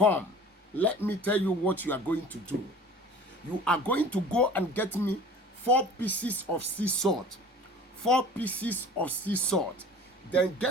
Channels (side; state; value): both; normal; correlation 0.44